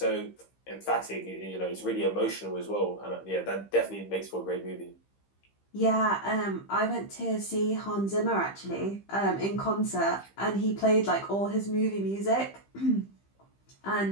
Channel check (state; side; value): late; right; 15 ms